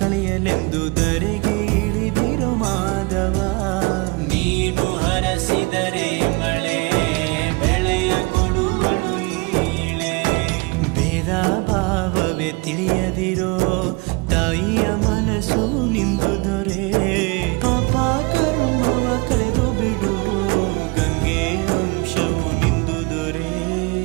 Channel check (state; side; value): quieter; left; 27.5 dB